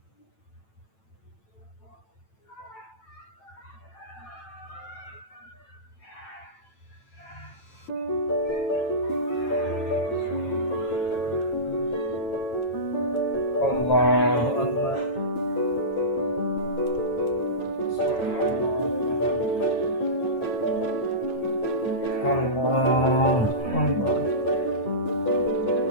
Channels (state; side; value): late; right; 9.0 ms